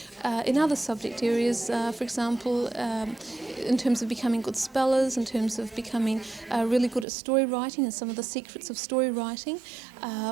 in other subject areas, for example, in terms of becoming good spellers, in terms of becoming really good at story writing and some of the secrets of story writing.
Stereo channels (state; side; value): drops out; left; at 7.1 s